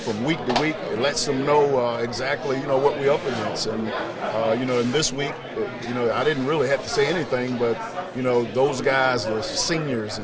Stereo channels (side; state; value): both; identical; correlation 1.00